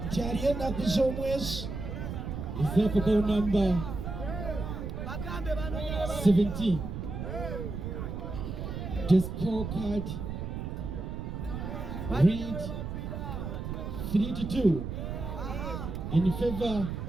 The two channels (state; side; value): noise; right; rumble, 5 dB below the sound